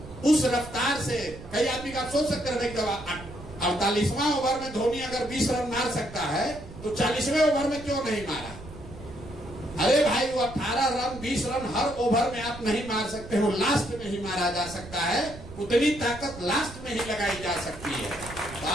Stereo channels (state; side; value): noise; right; rumble, 15 dB below the sound